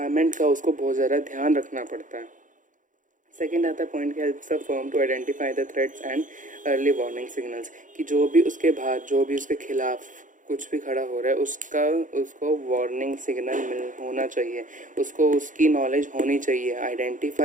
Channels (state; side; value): late; left; 0.37 ms